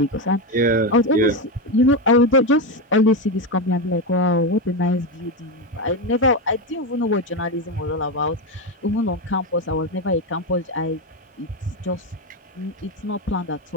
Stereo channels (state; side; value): normal; both; correlation 0.12